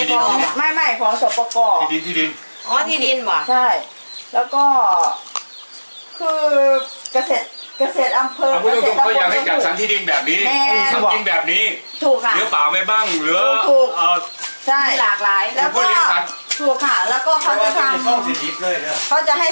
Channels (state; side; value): inverted; both; correlation -1.00